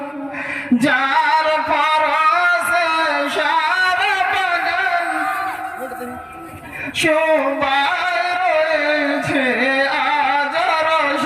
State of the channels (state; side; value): identical; both; correlation 1.00